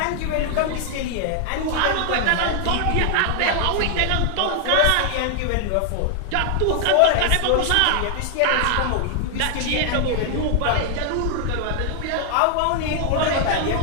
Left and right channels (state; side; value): different; both; correlation 0.00